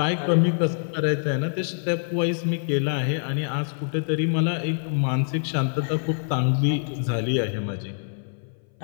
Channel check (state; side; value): silent; right; 58 dB below the other